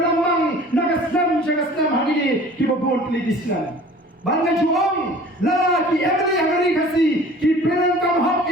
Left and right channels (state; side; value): normal; both; correlation 0.46